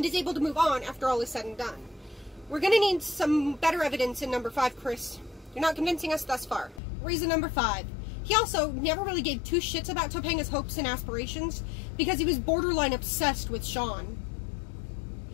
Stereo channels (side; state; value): right; drops out; at 6.8 s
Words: is able to move on after all is said and done. We're gonna need some better evidence in number 5, Chris. You're not convincing us thus far. Reason number 5. He also never really gave two shits about Topanga's hopes and aspirations because he was borderline obsessed with Sean.